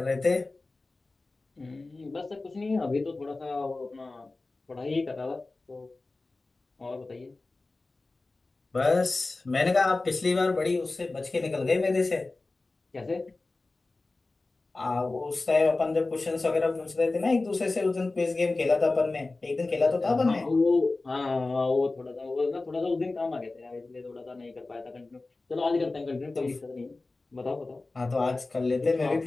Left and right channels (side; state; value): right; quieter; 3.3 dB